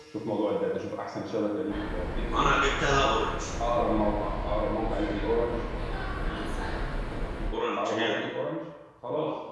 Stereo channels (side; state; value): both; identical; correlation 1.00